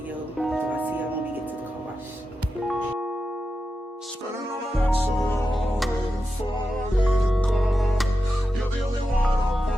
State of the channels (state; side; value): normal; both; correlation 0.90